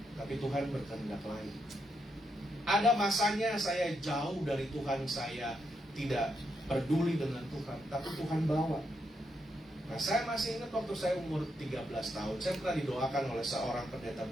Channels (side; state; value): both; normal; correlation 0.81